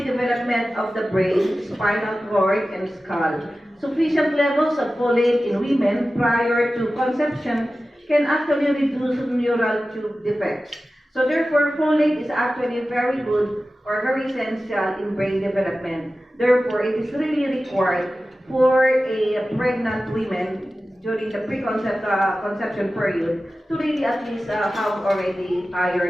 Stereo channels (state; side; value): normal; both; correlation 0.95